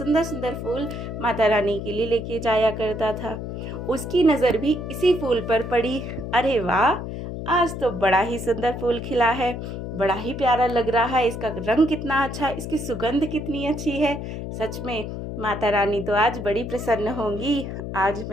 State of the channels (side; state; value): left; noise; hum, 6 dB below the sound